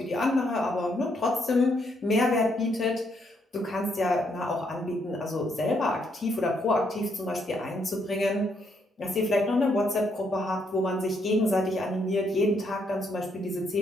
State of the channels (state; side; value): normal; both; correlation 0.74